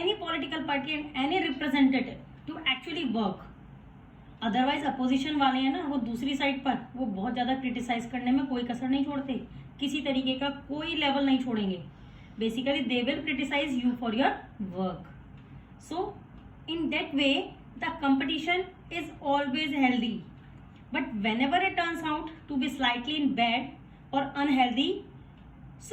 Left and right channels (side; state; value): both; identical; correlation 1.00